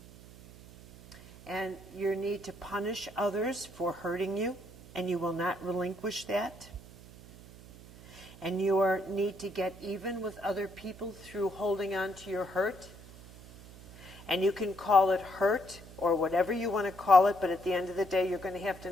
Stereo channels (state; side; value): noise; right; hum, 19 dB below the sound